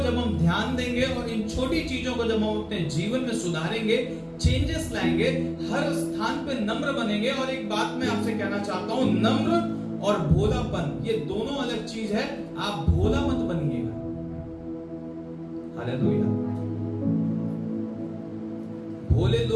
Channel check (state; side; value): identical; both; correlation 1.00